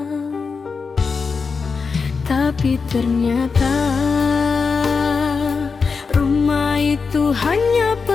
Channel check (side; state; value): right; quieter; 5.0 dB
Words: Tapi ternyata rumah itu hanya